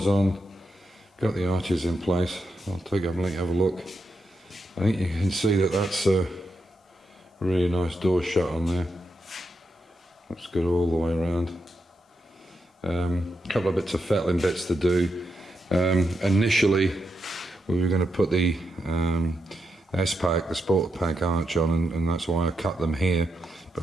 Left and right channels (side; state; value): both; normal; correlation 0.84